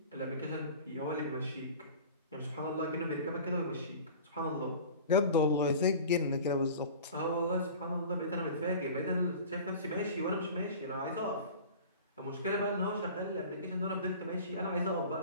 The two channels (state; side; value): inverted; both; correlation -0.39